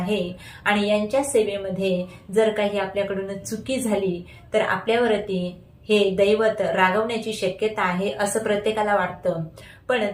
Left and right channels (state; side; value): identical; both; correlation 1.00